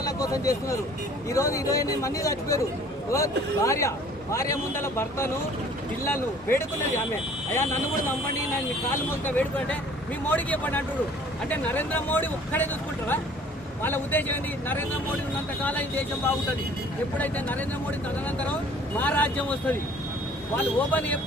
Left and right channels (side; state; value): both; normal; correlation 0.53